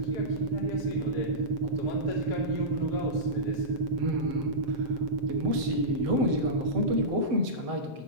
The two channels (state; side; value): late; left; 7.8 ms